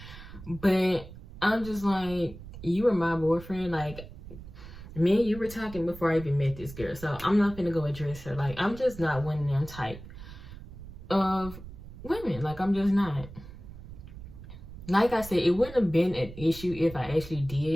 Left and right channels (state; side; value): noise; right; rumble, 14 dB below the sound